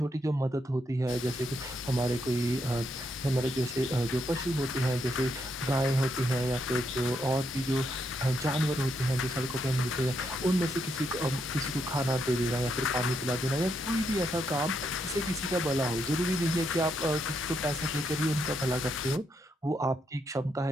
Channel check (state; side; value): normal; both; correlation 0.78